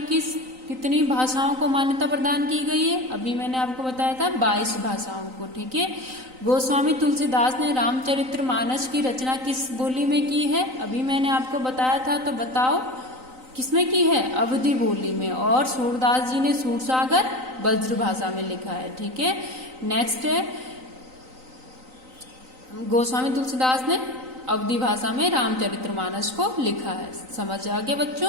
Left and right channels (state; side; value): late; left; 3.9 ms